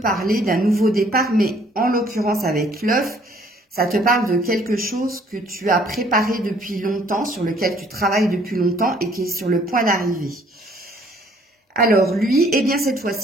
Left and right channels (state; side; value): normal; both; correlation 0.60